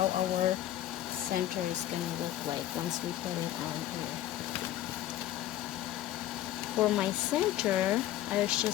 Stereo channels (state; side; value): quieter; right; 13.5 dB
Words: our center is going to look like once we put it on here. For my center, I was